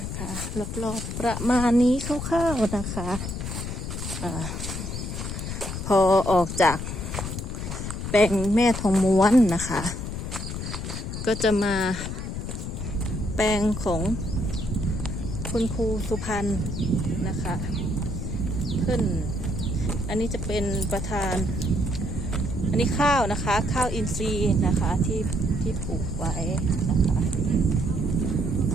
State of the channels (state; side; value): noise; left; rumble, 5 dB below the sound